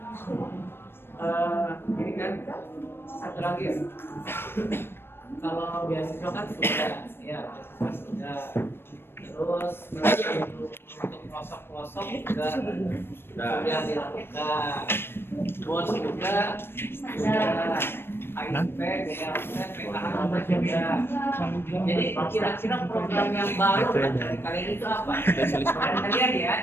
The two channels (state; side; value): late; right; 0.11 ms